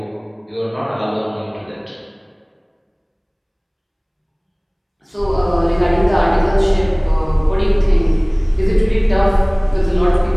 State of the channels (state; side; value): identical; both; correlation 1.00